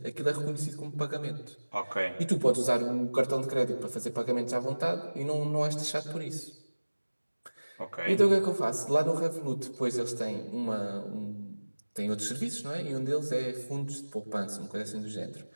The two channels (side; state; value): both; inverted; correlation -1.00